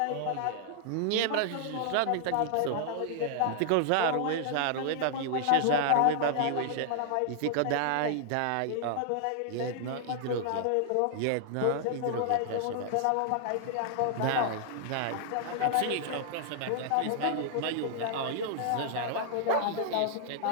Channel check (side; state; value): both; different; correlation -0.01